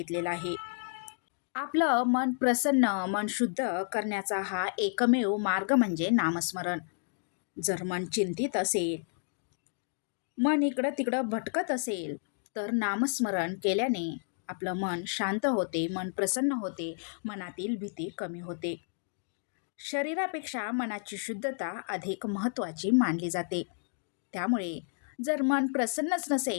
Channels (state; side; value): silent; right; digital silence